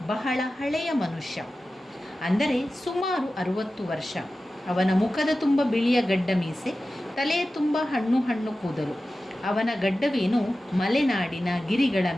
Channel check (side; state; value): both; normal; correlation 0.95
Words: ಬಹಳ ಹಳೆಯ ಮನುಷ್ಯ, ಅಂದರೆ ಸುಮಾರು 60 ವರ್ಷ. ಅವನ ಮುಖದ ತುಂಬ ಬಿಳಿಯ ಗಡ್ಡ ಮೀಸೆ, ತಲೆಯ ತುಂಬ ಹಣ್ಣು ಕೂದಲು. ಅವನ ಗಡ್ಡವೇನು ಮಲೆನಾಡಿನ ಗಿರಿಗಳ